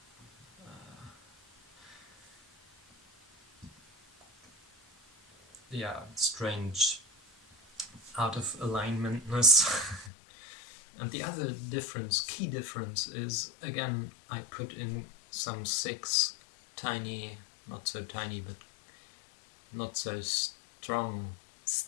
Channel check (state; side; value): drops out; right; at 10.1 s